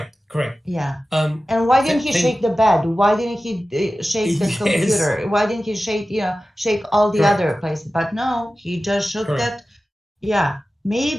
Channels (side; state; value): both; normal; correlation 0.95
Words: Yeah. And why didn't he shake the bed? Why didn't he shake the computer? Why didn't he shake all the other places? But no, he just shook that. Yeah.